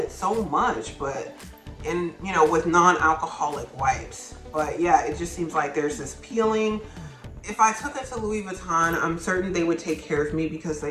so much, but you know, with non-alcoholic wipes. But yeah, it just seems like there's this peeling. If I took it to Louis Vuitton, I'm certain they would take care of me because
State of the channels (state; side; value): identical; both; correlation 1.00